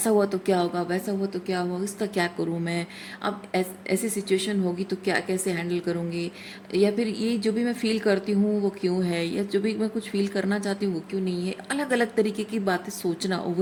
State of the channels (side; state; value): both; identical; correlation 1.00